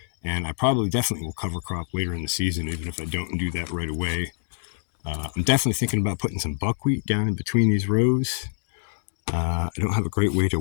And I probably definitely will cover crop later in the season, even if I don't do that right away. I'm definitely thinking about putting some buckwheat down in between these rows. I don't have a great way to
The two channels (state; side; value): silent; right; digital silence